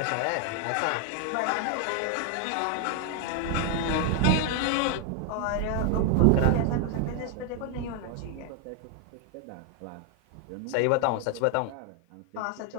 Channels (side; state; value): both; different; correlation 0.00